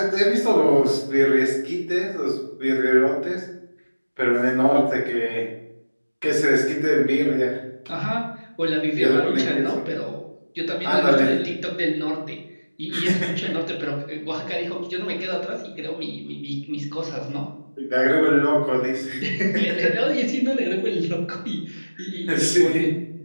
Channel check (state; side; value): inverted; both; correlation -1.00